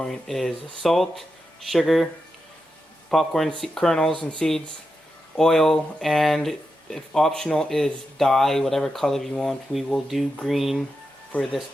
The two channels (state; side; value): normal; both; correlation 0.88